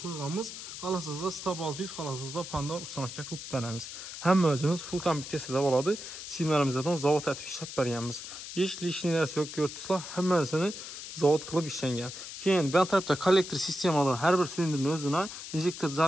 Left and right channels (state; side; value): noise; left; hiss, 10 dB below the sound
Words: qo'yganmiz. Xolasizda Stab 600, xolasizda Panda ustamaga qilib beramiz. Hamma o'zimiz full kompleksiyada bo'ladi. Simlarimizdan zavod atib ishlab berganmiz. Hech lishniy narsa yo'q, ko'rtsizlar, hammasini zavod qilib ishlangan. Keyin bu tarafda kollektor sistemada har bir silindrning o'zini injektor